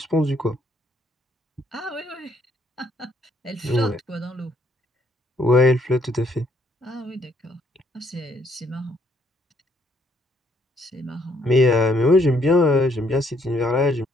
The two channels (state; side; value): normal; both; correlation 0.68